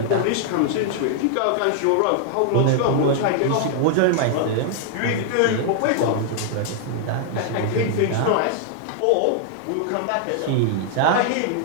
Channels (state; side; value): different; both; correlation -0.01